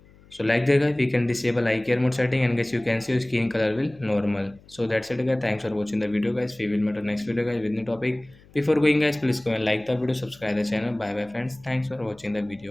So like that guys, we can disable eye care mode setting, and guys you can see your skin color will normal. So that's it guys. Thanks for watching the video guys. We will meet on next video guys with new topic. Before going guys, please go and like the video, subscribe the channel. Bye bye friends. Thanks for watching the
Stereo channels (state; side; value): noise; left; hum, 26 dB below the sound